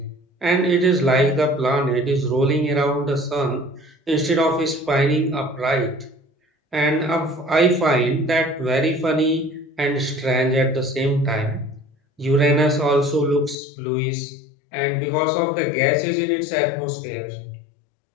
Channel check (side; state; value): right; drops out; at 13.6 s